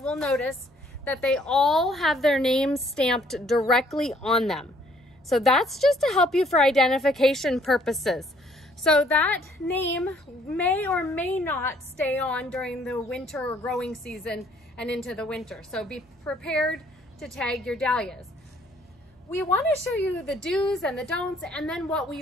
notice that they all have their names stamped directly on them. So that's just to help you for identification purposes. So that name may or may not stay on during the winter or growing season and into the winter. So be prepared to tag your dahlias. We want to show you the do's and the don'ts and then what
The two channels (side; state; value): both; normal; correlation 0.63